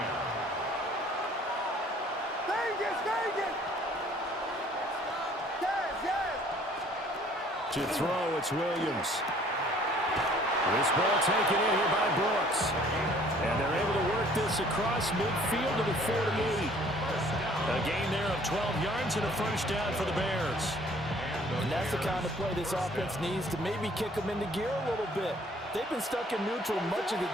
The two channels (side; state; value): both; normal; correlation 0.56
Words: To throw, it's Williams. This ball taken in here by Brooks. And they're able to work this across midfield to the 48. A gain there of 12 yards and a first down for the Bears. And that's the kind of play this offense needs to maybe kick them into gear a little bit. They've been stuck in neutral much of the